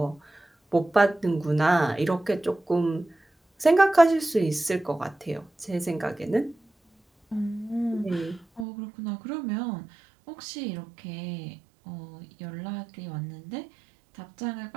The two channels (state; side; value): drops out; left; at 8.7 s